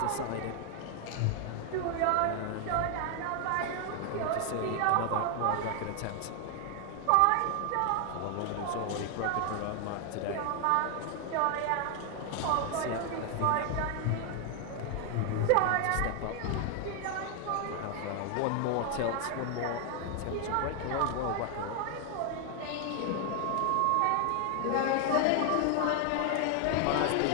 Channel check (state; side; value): different; both; correlation 0.00